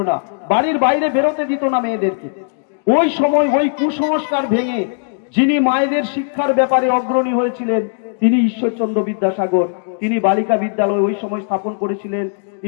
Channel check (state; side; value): silent; right; digital silence